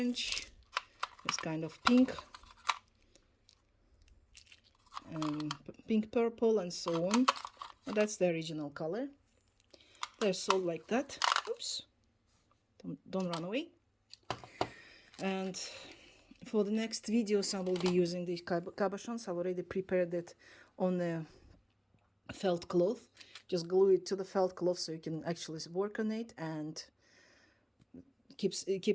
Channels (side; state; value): both; identical; correlation 1.00